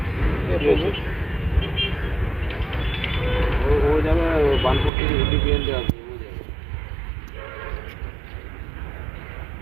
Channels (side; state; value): left; drops out; at 4.9 s